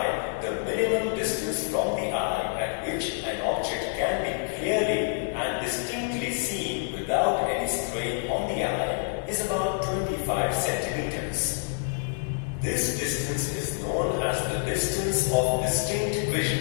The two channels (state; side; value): silent; right; digital silence